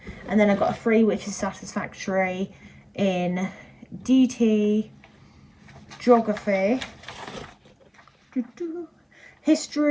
and then I got a 3, which is satisfactory in DT, geography,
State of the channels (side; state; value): both; identical; correlation 1.00